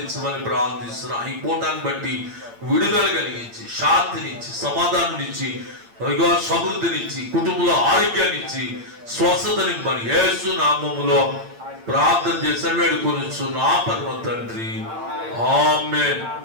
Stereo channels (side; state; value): left; late; 8.8 ms